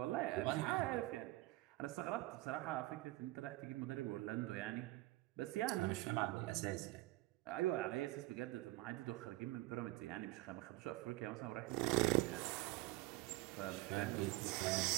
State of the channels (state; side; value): quieter; left; 19.4 dB